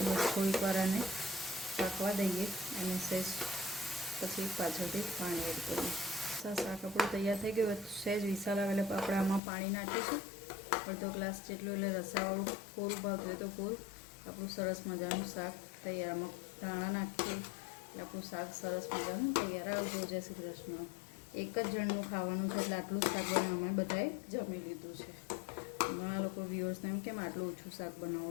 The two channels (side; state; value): right; drops out; at 9.4 s